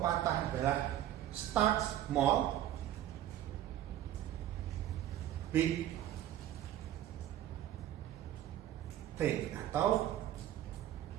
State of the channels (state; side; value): quieter; left; 12.4 dB